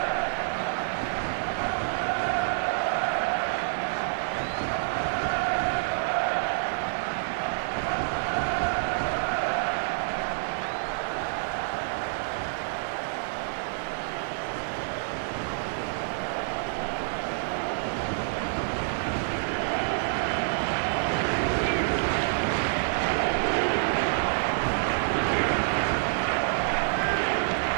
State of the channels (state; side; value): silent; left; 59 dB below the other